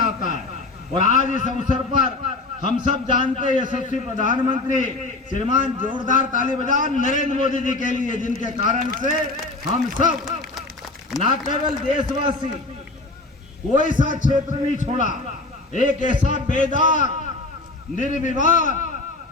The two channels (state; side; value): quieter; right; 3.2 dB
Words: है। और आज इस अवसर पर हम सब जानते हैं यशस्वी प्रधानमंत्री श्रीमान जोरदार ताली बजाओ नरेंद्र मोदी जी के लिए, जिनके कारण से हम सब न केवल देशवासी कोई सा क्षेत्र नहीं छोड़ा, एक ऐसा बेदाग